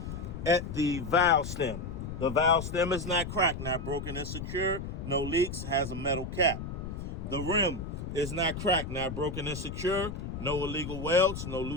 At the valve stem. The valve stem is not cracked, not broken and secure, no leaks, has a metal cap. The rim is not cracked, not broken and secure, no illegal welds, no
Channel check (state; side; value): noise; left; rumble, 7 dB below the sound